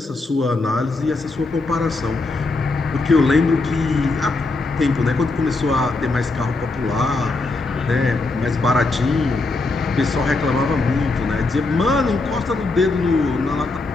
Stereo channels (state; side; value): quieter; right; 3.4 dB